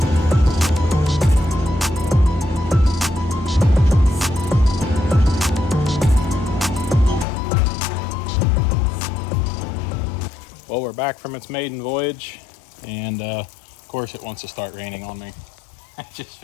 Well, we're back from its maiden voyage, and of course it wants to start raining on me. It just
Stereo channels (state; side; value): drops out; right; at 7.2 s